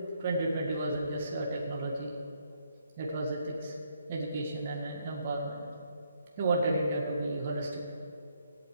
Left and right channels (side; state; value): both; inverted; correlation -0.72